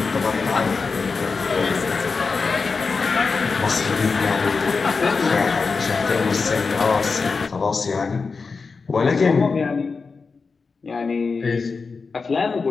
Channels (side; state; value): right; quieter; 4.6 dB